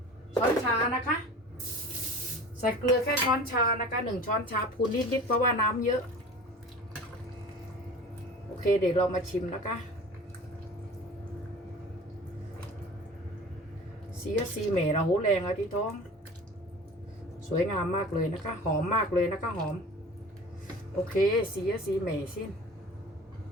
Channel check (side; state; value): both; normal; correlation 0.39